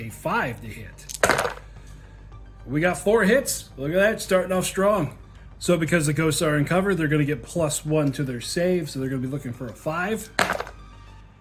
5 to hit. We got 4 hits. Look at that, starting off strong. So because the ghosts are in cover, they're going to get +1 to their save, so they're going to be looking for a 5.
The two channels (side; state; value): both; identical; correlation 1.00